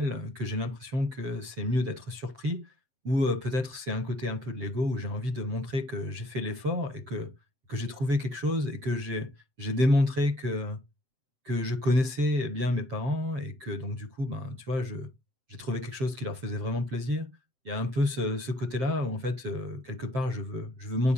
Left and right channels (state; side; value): late; left; 7.7 ms